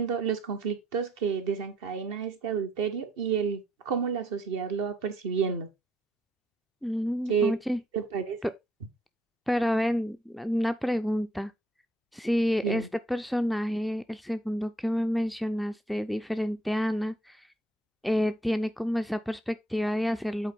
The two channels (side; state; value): both; normal; correlation 0.70